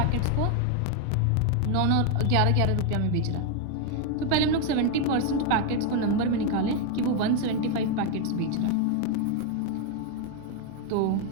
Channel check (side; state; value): both; different; correlation 0.01